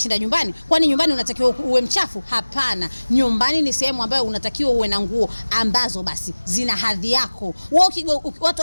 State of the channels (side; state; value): both; inverted; correlation -1.00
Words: nyumbani? Kwani nyumbani unatakiwa uwe mchafu? Hapana. Nyumbani ni sehemu ambayo unatakiwa uwe na nguo ambazo basi zina hadhi yako. Watu